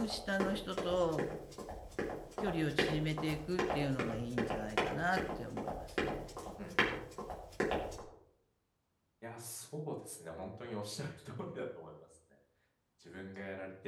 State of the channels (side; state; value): both; identical; correlation 1.00